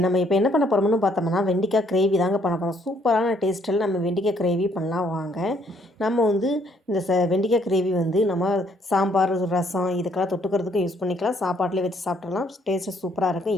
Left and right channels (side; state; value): both; normal; correlation 0.66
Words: நம்ம இப்போ என்ன பண்ண போறோம்னு பார்த்தோம்னா, வெண்டைக்காய் கிரேவி தாங்க பண்ண போறோம். சூப்பரான டேஸ்ட்டில நம்ம வெண்டைக்காய் கிரேவி பண்ணலாம் வாங்க. நம்ம வந்து இந்த வெண்டைக்காய் கிரேவி வந்து நம்ம சாம்பார், ரசம் இதுக்கெல்லாம் தொட்டுக்கிறதுக்கும் யூஸ் பண்ணிக்கலாம். சாப்பாட்டிலே வச்சு சாப்பிட்றலாம். டேஸ்ட்டு சூப்பரா இருக்கும்.